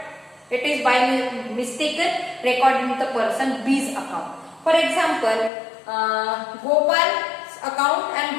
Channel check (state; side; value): drops out; right; at 5.5 s